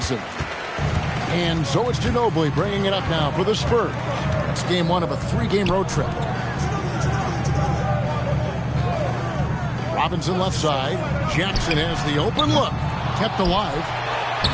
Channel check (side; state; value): both; identical; correlation 1.00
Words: And so it's Ginobili bringing it up now for the Spurs. It's game 1 of a 3-game road trip. Robinson left side. Jackson has the open look. Kept alive.